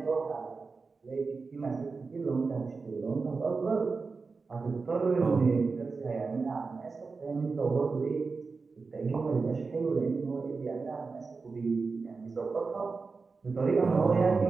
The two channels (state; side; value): quieter; left; 4.4 dB